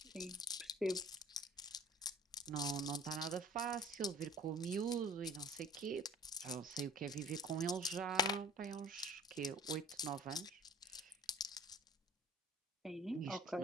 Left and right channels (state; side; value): normal; both; correlation 0.47